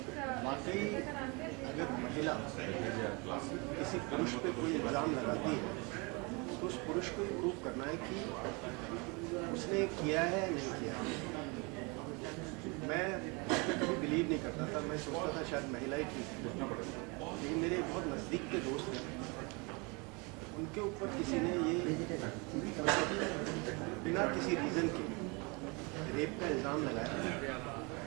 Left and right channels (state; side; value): quieter; left; 29.4 dB